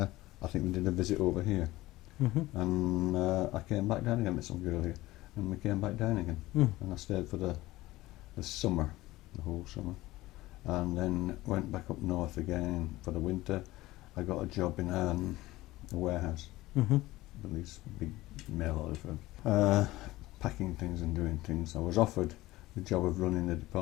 I think we did a visit over here. And I came back down again, met some girl here, and we came back down again. And I stayed for the summer, the whole summer, and then went back up north again for the winter. I got a job in a warehouse, with these big mail order firms, packing things and doing things. I was offered the job of running the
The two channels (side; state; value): right; quieter; 18.1 dB